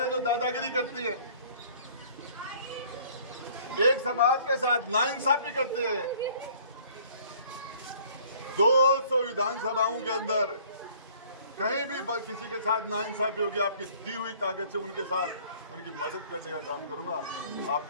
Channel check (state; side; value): inverted; both; correlation -0.54